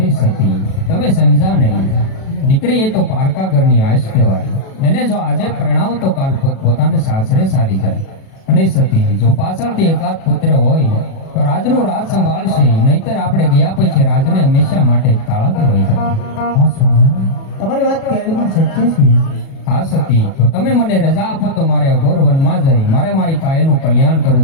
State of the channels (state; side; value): late; right; 37 ms